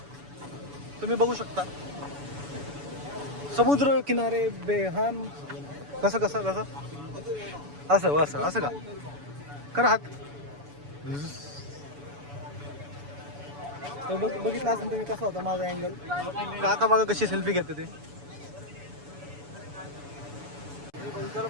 तुम्ही बघू शकता. समुद्र किनारे बेहान. कसं असं का करा हात. बघितलं असेल तुम्ही कसा होता माझा अँगल. काका बघा कशी सेल्फी घेते ते. त्याला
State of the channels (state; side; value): late; left; 7.0 ms